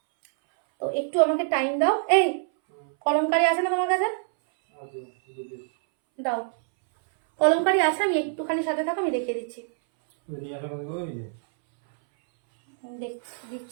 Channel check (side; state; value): left; silent; 61 dB below the other